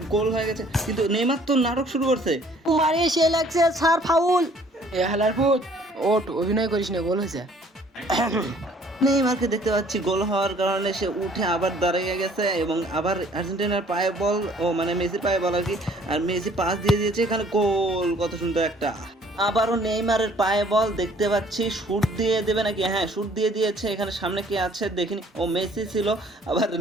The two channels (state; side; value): normal; both; correlation 0.58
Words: গোল হয়ে গেছে, কিন্তু নেইমার তো নাটক শুরু করছে। মারে সে লাগছে স্যার ফাউল। এ হালার পুত, ওট অভিনয় করিস না, গোল হয়েছে। নেইমারকে দেখতে পাচ্ছি গোল হওয়ার কারণে সে উঠে আবার দাঁড়িয়ে গেছে এবং আবার আর্জেন্টিনার পায়ে বল, মানে মেসির পায়ে বল আর কি। আর মেসি পাস দিয়ে দিয়েছে, এখানে গোল। কত সুন্দর একটা। আবারও নেইমারের পায়ে বল দেখতে পাচ্ছি। শুট দিয়ে দেবে নাকি? হ্যাঁ, শুট দিয়ে দিয়েছে। এখানে সামনে কি আছে দেখিনি। ও মেসি ছিল। আবার